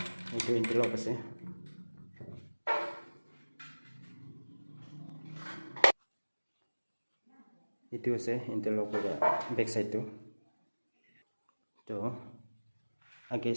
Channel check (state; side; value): inverted; both; correlation -1.00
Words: এইটো ইন্টাৰলক আছে এইটো আছে ইন্টাৰলক বেক সাইডটো তো আগে